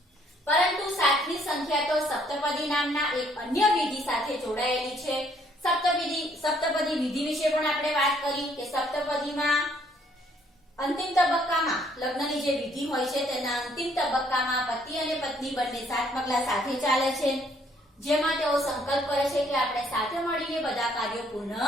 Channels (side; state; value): both; normal; correlation 0.65